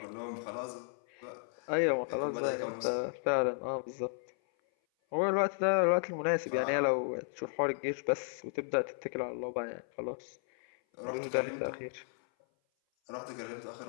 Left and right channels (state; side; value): silent; right; 55 dB below the other